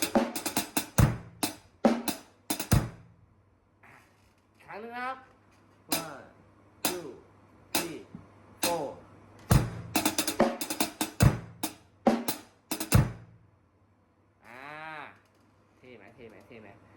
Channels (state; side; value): identical; both; correlation 1.00